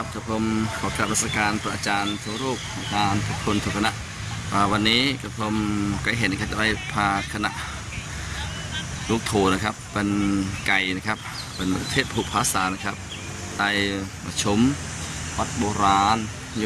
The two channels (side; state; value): both; identical; correlation 1.00